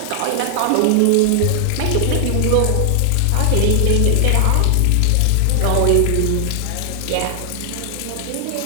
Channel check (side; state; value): both; different; correlation 0.00